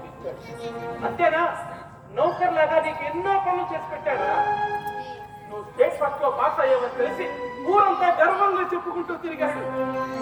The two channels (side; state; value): both; identical; correlation 1.00